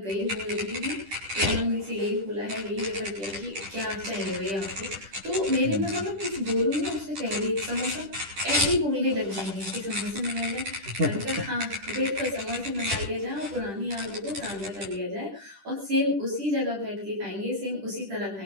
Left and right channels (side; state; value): left; late; 10 ms